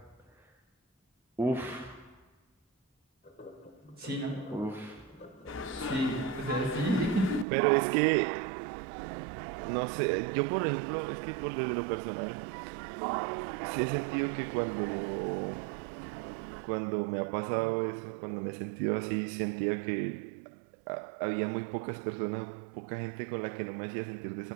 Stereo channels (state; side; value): drops out; left; at 7.5 s